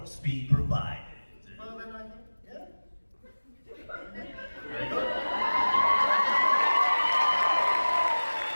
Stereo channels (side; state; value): both; inverted; correlation -1.00